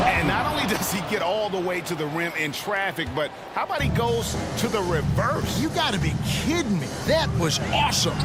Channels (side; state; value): both; identical; correlation 1.00